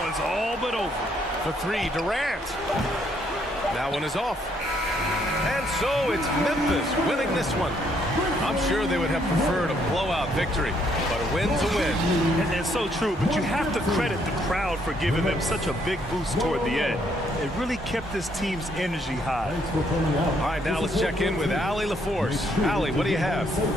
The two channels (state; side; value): normal; both; correlation 0.70